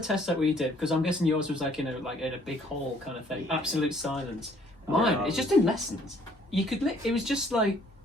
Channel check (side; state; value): both; normal; correlation 0.60